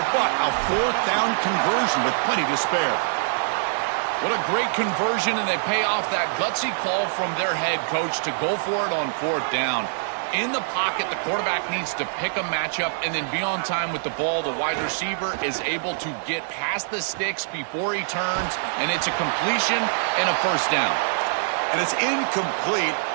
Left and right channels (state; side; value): silent; left; 62 dB below the other